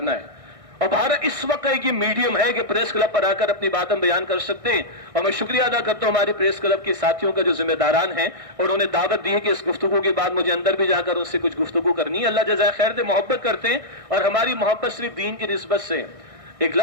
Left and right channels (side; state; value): left; late; 1.6 ms